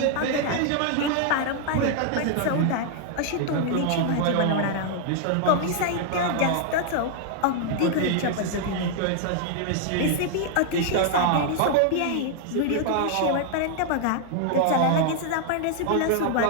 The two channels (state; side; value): different; both; correlation 0.00